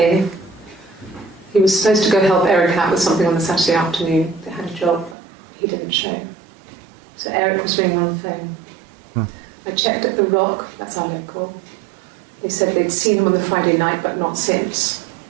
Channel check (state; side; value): drops out; left; at 5.2 s